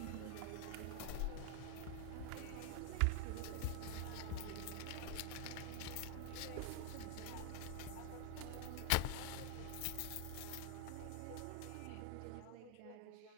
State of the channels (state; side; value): different; both; correlation 0.01